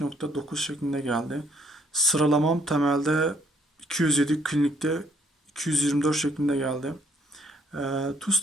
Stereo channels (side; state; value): both; normal; correlation 0.66